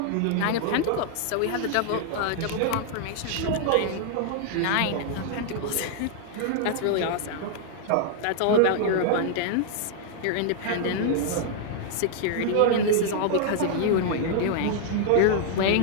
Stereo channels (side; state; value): both; different; correlation 0.00